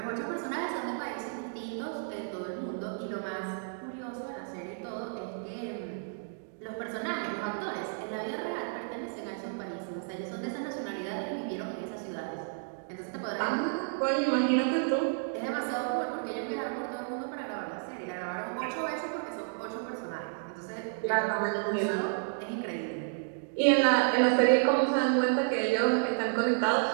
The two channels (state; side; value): silent; left; digital silence